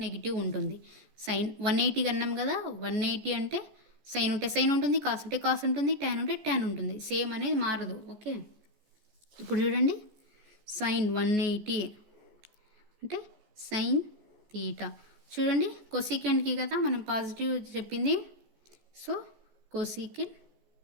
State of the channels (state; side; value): late; left; 14 ms